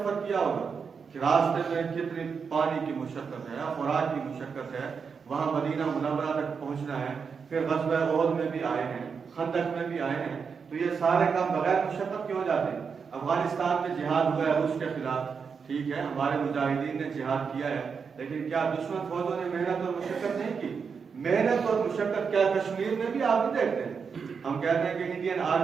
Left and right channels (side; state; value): left; quieter; 5.9 dB